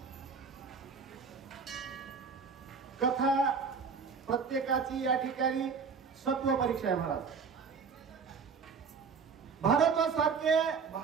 कथा प्रत्येकाची या ठिकाणी सत्व परीक्षा आहे महाराज।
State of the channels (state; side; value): quieter; left; 5.6 dB